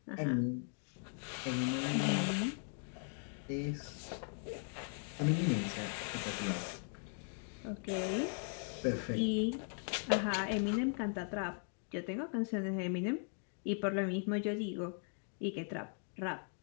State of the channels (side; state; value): right; silent; 52 dB below the other